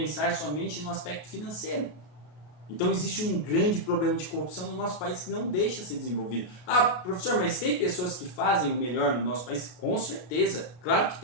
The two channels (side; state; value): right; late; 33 ms